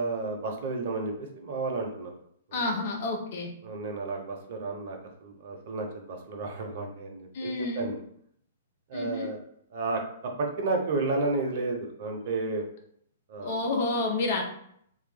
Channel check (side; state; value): both; inverted; correlation -0.37